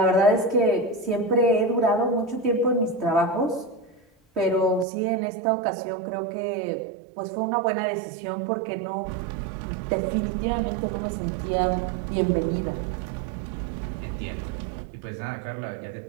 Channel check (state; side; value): drops out; left; at 4.9 s